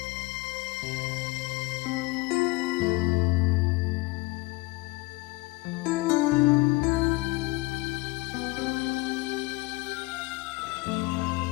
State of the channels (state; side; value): quieter; right; 22.9 dB